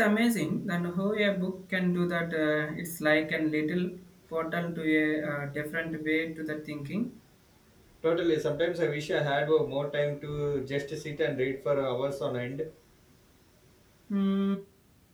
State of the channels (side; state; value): both; identical; correlation 1.00